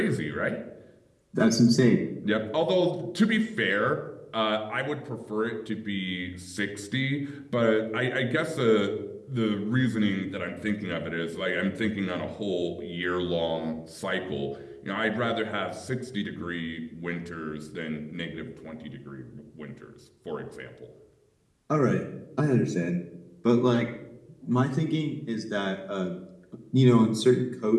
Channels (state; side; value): identical; both; correlation 1.00